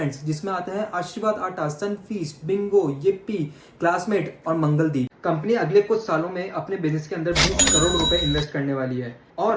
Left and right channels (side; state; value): both; identical; correlation 1.00